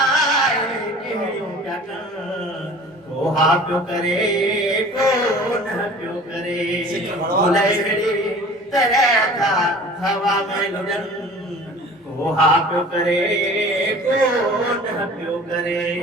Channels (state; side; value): normal; both; correlation 0.44